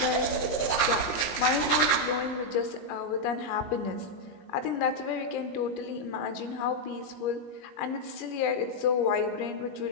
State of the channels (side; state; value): right; late; 21 ms